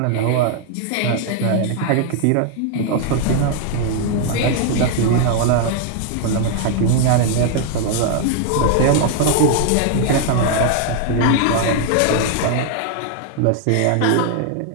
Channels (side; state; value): both; different; correlation 0.00